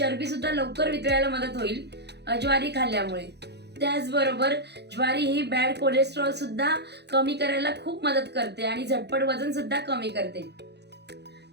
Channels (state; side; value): late; left; 0.49 ms